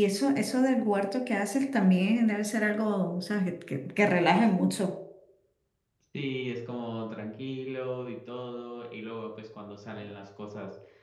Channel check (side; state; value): both; identical; correlation 1.00